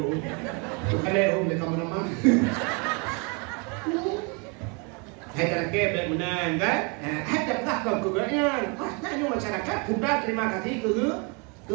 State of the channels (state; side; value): quieter; left; 32.8 dB